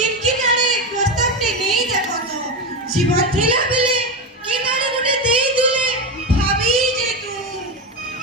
किनारे प्रस्ताव टे नहीं देखो तो जीवन थिला बेले किनारे गुटे देई दिले भाभी जे तू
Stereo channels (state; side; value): normal; both; correlation 0.17